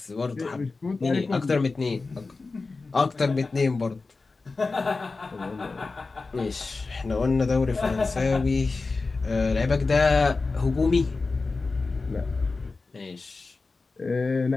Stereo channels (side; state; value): right; quieter; 3.9 dB